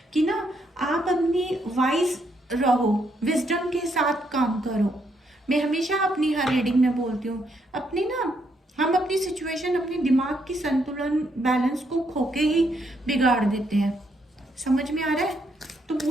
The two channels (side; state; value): both; normal; correlation 0.75